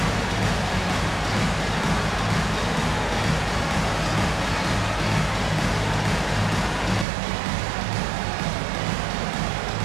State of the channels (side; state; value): left; drops out; at 7.1 s